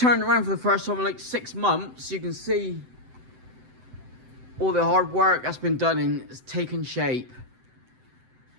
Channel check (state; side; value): late; left; 7.8 ms